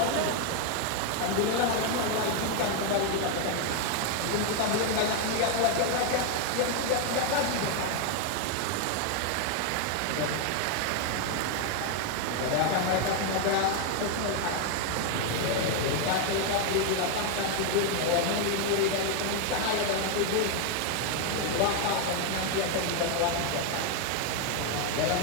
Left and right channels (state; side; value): different; both; correlation 0.01